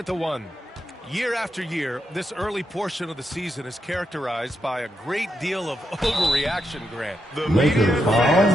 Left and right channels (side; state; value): both; normal; correlation 0.83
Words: the 1. Year after year, this early portion of the season is characterized by a great deal of overreaction, Grant. The Lakers